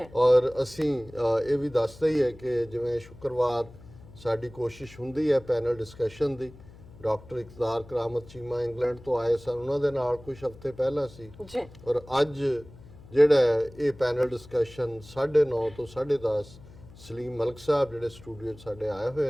ਔਰ ਅਸੀਂ ਇਹ ਵੀ ਦੱਸਦੇ ਹੀ ਹੈ ਕਿ ਜਿਵੇਂ ਸ਼ੁੱਕਰਵਾਰ ਸਾਡੀ ਕੋਸ਼ਿਸ਼ ਹੁੰਦੀ ਹੈ ਪੈਨਲ ਡਿਸਕਸ਼ਨ ਦੀ, ਡਾਕਟਰ ਇਕਤਦਾਰ ਕਰਾਮਤ ਚੀਮਾ ਇੰਗਲੈਂਡ ਤੋਂ ਆਏ ਸਨ, ਉਹਨਾਂ ਦੇ ਨਾਲ ਕੁਝ ਹਫ਼ਤੇ ਪਹਿਲਾਂ ਸੀ। ਔਰ ਅੱਜ ਜਿਹੜਾ ਇਹ ਪੈਨਲ ਡਿਸਕਸ਼ਨ 9:30 ਤੋਂ 10:30 ਸਲੀਮ ਮਲਕ ਸਾਹਿਬ ਜਿਹੜੇ ਸਟੂਡੀਓ 'ਚ ਸਾਡੇ ਆਏ ਹੋਏ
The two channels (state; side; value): noise; left; hum, 20 dB below the sound